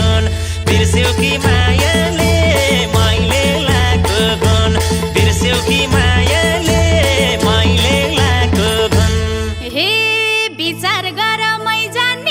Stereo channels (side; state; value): both; identical; correlation 1.00